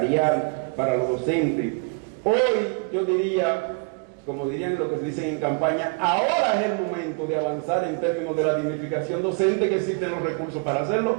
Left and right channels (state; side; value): quieter; left; 34.2 dB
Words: para los docentes. Hoy yo diría, como dirían lo que se dicen en campaña, ahora es el momento de avanzar en términos de la dignificación docente, que existen los recursos para hacerlo,